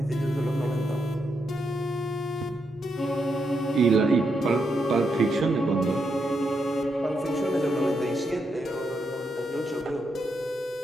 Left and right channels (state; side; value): normal; both; correlation 0.81